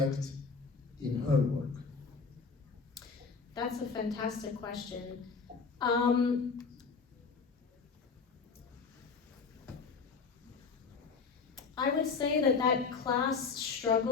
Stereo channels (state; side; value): quieter; right; 5.0 dB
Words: in her work? That's a fantastic question. I would say that class